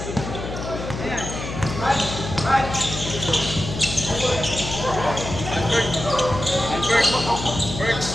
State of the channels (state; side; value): noise; left; hum, 7 dB below the sound